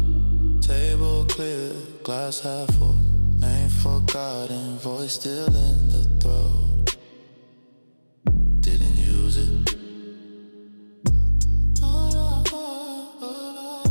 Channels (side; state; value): both; inverted; correlation -1.00